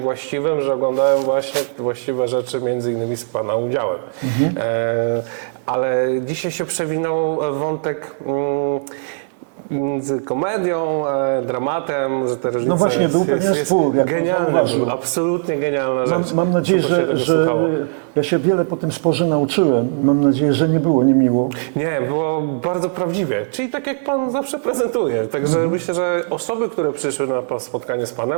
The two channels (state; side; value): silent; left; digital silence